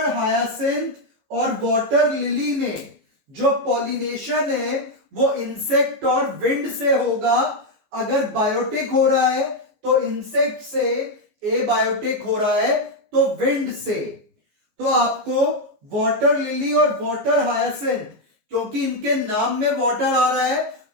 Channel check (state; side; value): late; left; 14 ms